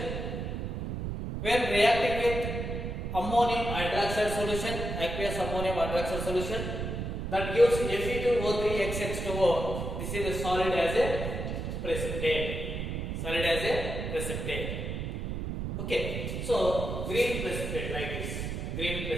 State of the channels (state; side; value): noise; right; rumble, 4 dB below the sound